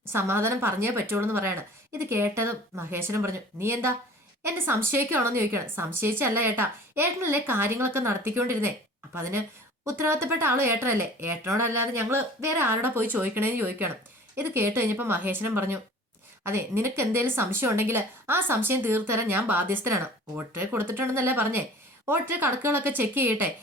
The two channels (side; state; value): both; normal; correlation 0.45